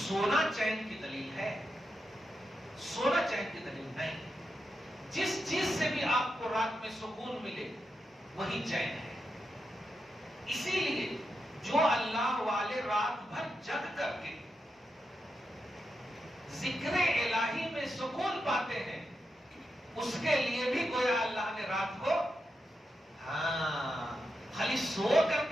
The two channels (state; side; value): normal; both; correlation 0.87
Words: چین کی دلیل ہے؟ سونا چین کی دلیل نہیں، جس چیز سے بھی آپ کو رات میں سکون ملے وہی چین ہے۔ اسی لیے جو اللہ والے رات بھر جگ کر کے ذکر الہی میں سکون پاتے ہیں، اس کے لیے بھی گویا اللہ نے رات کو خالی سو کر